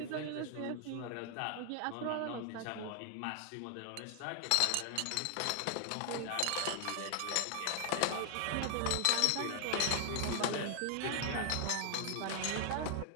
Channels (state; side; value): different; both; correlation 0.00